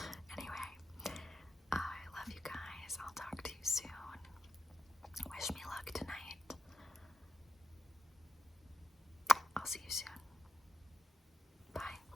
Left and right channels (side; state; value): both; normal; correlation 0.90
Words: Anyway, I love you guys. I'll talk to you soon. Wish me luck tonight. I'll see you soon.